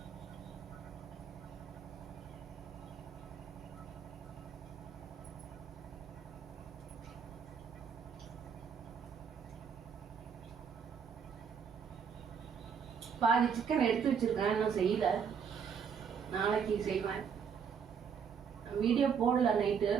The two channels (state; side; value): quieter; left; 6.9 dB